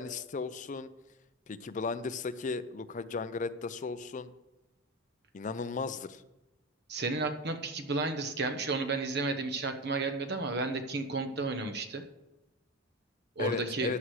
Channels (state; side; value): normal; both; correlation 0.20